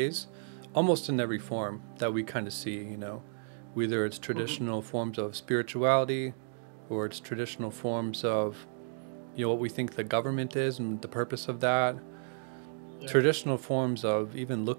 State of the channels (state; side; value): silent; left; digital silence